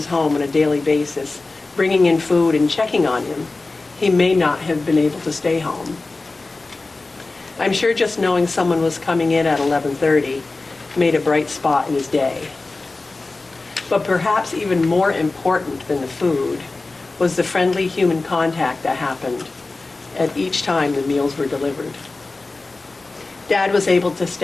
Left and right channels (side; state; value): right; quieter; 3.4 dB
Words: home on a daily basis, bringing in food and checking on him, he may not have been able to stay home. I'm sure just knowing someone was coming in at 11:30 made a bright spot in his day. But perhaps even more important than the food was the friendly human contact that happened at each time the meals were delivered. Dad was able to